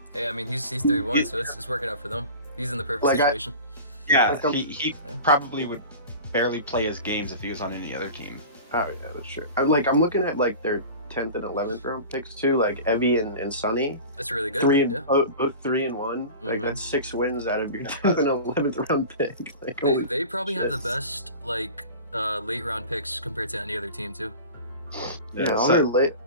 Hey, I mean, he's 3-1, so it's working out for them. He's in the perfect Like, situation. Yeah, Like, he Yeah. probably would barely play his games if he was on any other team. Oh yeah, that's true. I'm looking at like their 10th and 11th round picks too, like Evie and Sunny. That's really good. Three and yeah. both 3-1. Like Mhm. that's 6 wins out of your 10th and 11th round pick. Like, They, holy they probably have the shit. best like late round picks compared to any other team too. Yeah, So- all their late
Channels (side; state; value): both; inverted; correlation -0.35